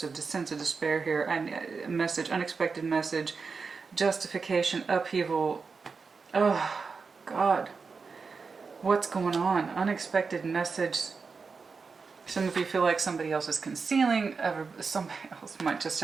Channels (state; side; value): quieter; left; 4.9 dB